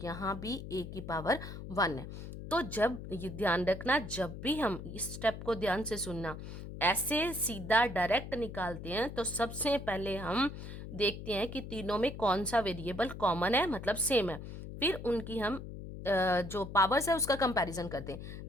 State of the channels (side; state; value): left; noise; hum, 10 dB below the sound